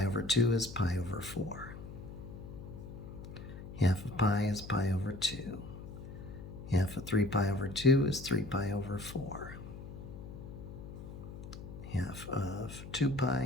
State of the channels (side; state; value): left; noise; hum, 12 dB below the sound